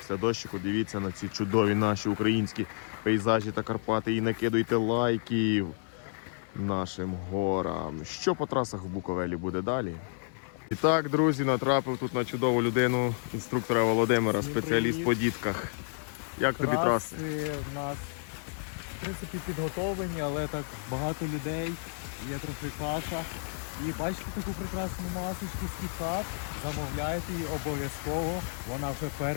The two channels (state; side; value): silent; right; digital silence